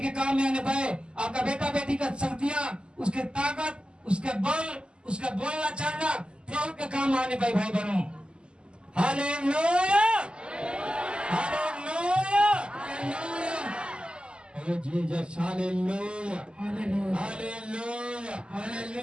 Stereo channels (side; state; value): left; late; 0.051 ms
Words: के काम में आने पाए। आपका बेटा बेटी का शक्तियां, उसके ताकत, उसके बल, उसका बोलना चलना प्रभु के काम में आने पाए भाई बहनों। Hallelujah, hallelujah, hallelujah. Jesus, hallelujah, hallelujah,